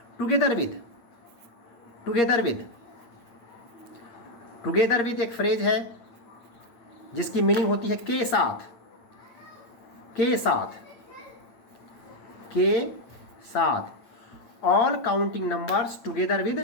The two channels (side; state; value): right; late; 8.5 ms